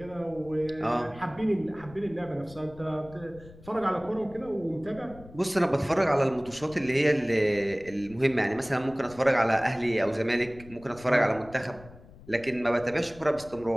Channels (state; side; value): noise; left; rumble, 20 dB below the sound